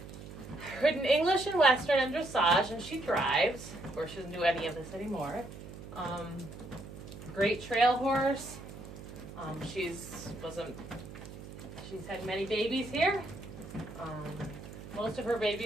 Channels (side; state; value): right; noise; hum, 13 dB below the sound